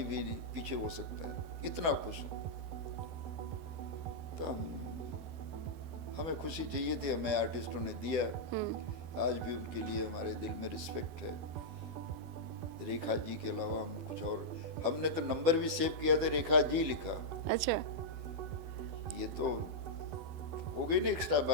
भी पीछे हो सकता है, इतना खुश हूँ। तो हमें खुशी चाहिए थी, हमें आर्टिस्टों ने दिया। आज भी उनके लिए हमारे दिल में रिस्पेक्ट है। रेखा जी के अलावा हम कुछ और, हमने तो नंबर भी सेव किया था, रेखा जी लिखा। अच्छा, ये तो हो गई ना एक्स्ट्रा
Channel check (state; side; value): late; left; 12 ms